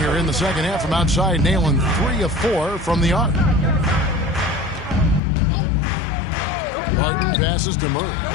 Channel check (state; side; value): drops out; right; at 5.2 s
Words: in the second half from outside, nailing 3 of 4 from the arc. Martin passes to Murray.